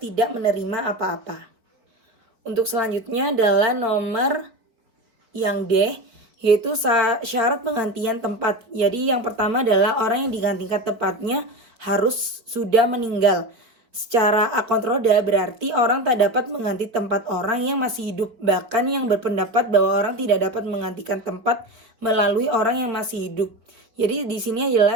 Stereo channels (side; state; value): left; late; 4.4 ms